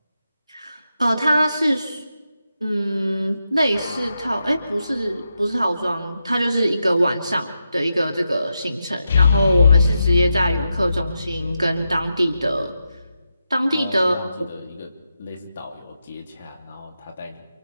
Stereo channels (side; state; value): both; inverted; correlation -0.87